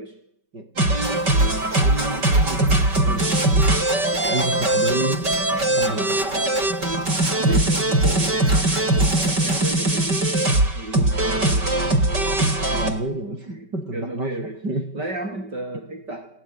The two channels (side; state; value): left; late; 5.2 ms